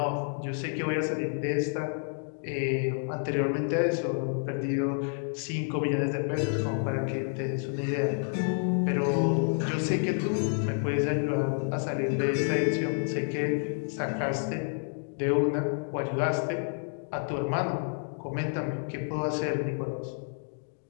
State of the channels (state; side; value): silent; right; 58 dB below the other